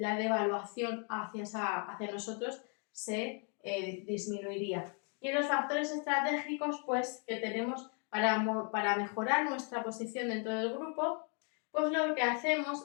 devaluación hacia nosotros se disminuiría. Y en los factores estratégicos, pues, que tenemos para mejorar nuestra posición dentro del grupo, pues lo que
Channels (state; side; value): quieter; right; 39.2 dB